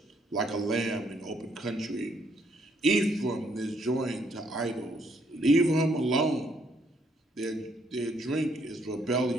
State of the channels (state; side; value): normal; both; correlation 0.70